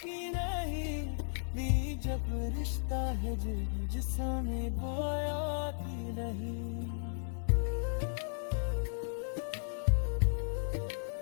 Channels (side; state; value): right; silent; digital silence